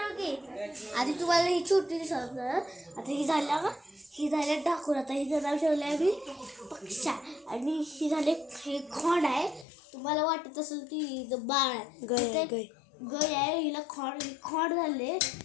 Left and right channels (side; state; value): right; drops out; at 9.7 s